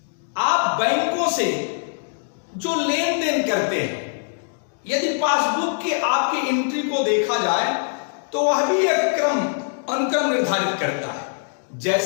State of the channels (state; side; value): silent; right; digital silence